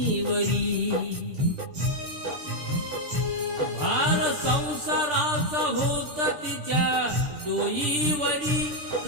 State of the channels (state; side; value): late; left; 6.8 ms